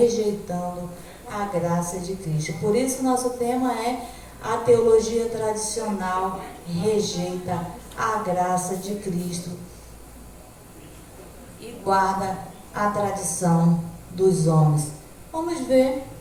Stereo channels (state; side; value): identical; both; correlation 1.00